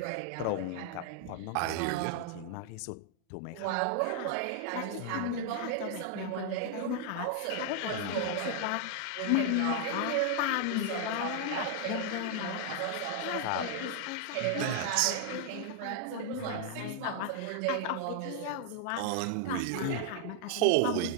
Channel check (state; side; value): different; both; correlation 0.00